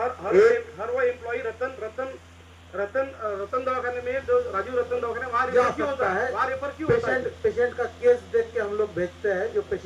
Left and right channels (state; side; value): identical; both; correlation 1.00